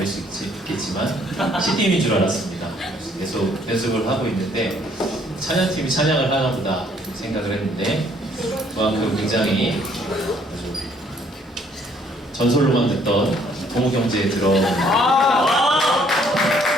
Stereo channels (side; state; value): both; normal; correlation 0.64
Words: 수 있겠지만 CD인 줄 알았습니다. 계속 연습을 하고 있는데 찬양팀이 찬양을 하나 보다 생각을 했는데 그만큼 굉장히 전설로만 듣던 동욱 형제에 들어온